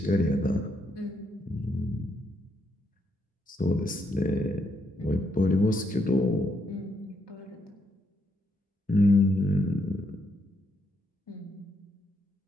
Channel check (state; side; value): normal; both; correlation 0.77